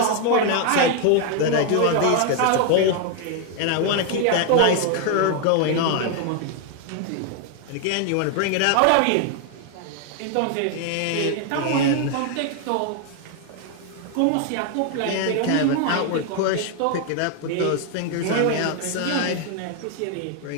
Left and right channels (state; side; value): different; both; correlation 0.00